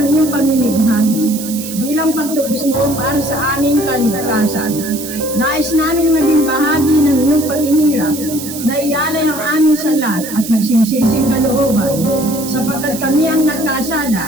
iyong pamimighati bilang pagtubos mo para sa aming kaligtasan. Nais namin maging bahagi ng iyong paghihirap na iyalay ang aming salat at nagsisising kalooban, sapagkat kami ang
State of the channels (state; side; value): noise; right; hiss, 10 dB below the sound